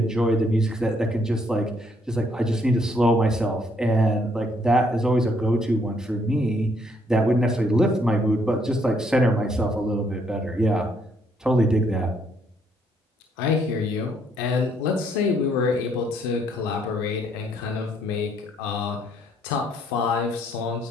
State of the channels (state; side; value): normal; both; correlation 0.69